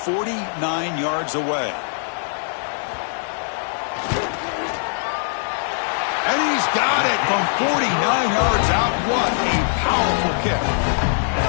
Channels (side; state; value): right; silent; digital silence